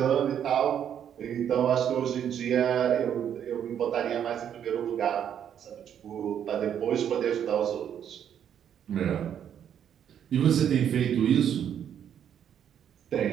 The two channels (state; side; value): quieter; left; 9.2 dB